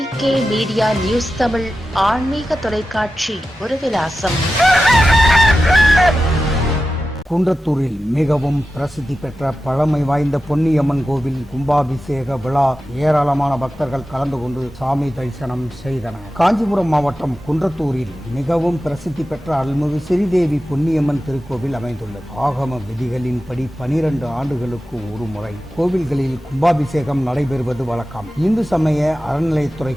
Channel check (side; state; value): both; normal; correlation 0.93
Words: மீடியா நியூஸ் தமிழ் ஆன்மீக தொலைக்காட்சி ஒரு விலாசம். குன்றத்தூரில் மிகவும் பிரசித்தி பெற்ற பழமை வாய்ந்த பொன்னியம்மன் கோவில் கும்பாபிஷேக விழா ஏராளமான பக்தர்கள் கலந்து கொண்டு சாமி தரிசனம் செய்தனர். காஞ்சிபுரம் மாவட்டம் குன்றத்தூரில் மிகவும் பிரசித்தி பெற்ற அருள்மிகு ஸ்ரீதேவி பொன்னியம்மன் திருக்கோவில் அமைந்துள்ளது. ஆகம விதிகளின்படி 12 ஆண்டுகளுக்கு ஒரு முறை கோவில்களில் கும்பாபிஷேகம் நடைபெறுவது வழக்கம். இந்து சமய